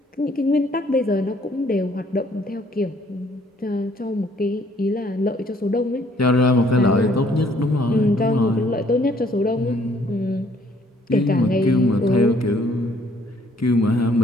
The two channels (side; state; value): both; normal; correlation 0.63